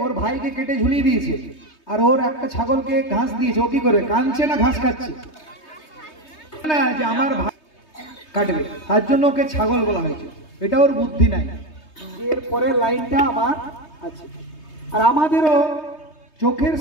ওর ভাইকে কেটে ঝুলিয়ে দিয়েছে, আর ওর একটা ছাগলকে ঘাস দিয়েছে, ও কি করবে? কাঁদছে না ঘাস খাচ্ছে? না, যে আমার ভাই কাটবে, তার জন্য ওকে ছাগল বলা হয়েছে। এটা ওর বুদ্ধি নাই। এর পরের লাইনটা আমার আছে। আর আমাদেরও চোখের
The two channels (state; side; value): late; right; 3.2 ms